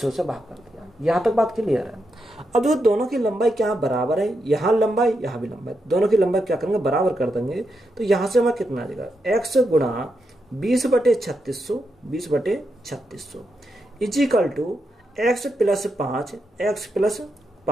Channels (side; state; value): both; normal; correlation 0.84